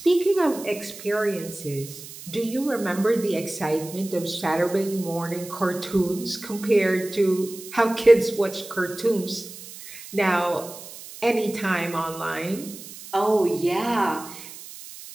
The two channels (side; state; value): right; noise; hiss, 15 dB below the sound